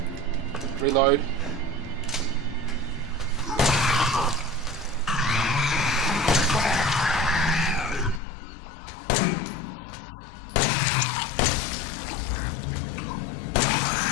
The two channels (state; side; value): drops out; right; at 8.2 s